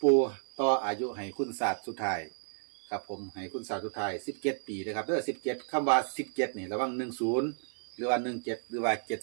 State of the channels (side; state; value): left; silent; digital silence